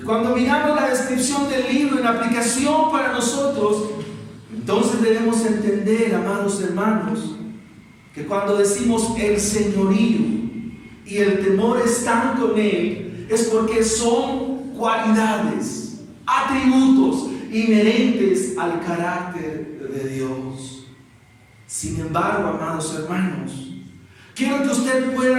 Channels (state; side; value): identical; both; correlation 1.00